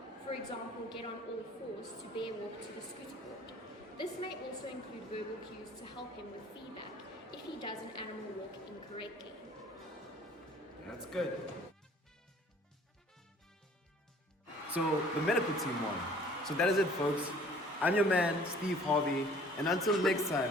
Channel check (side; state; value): both; normal; correlation 0.53